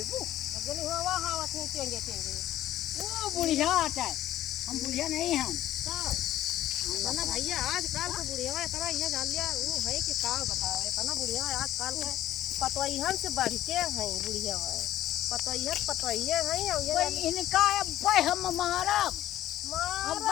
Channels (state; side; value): quieter; right; 13.4 dB